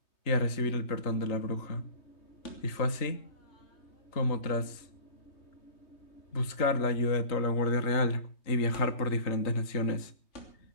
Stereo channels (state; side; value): late; right; 3.2 ms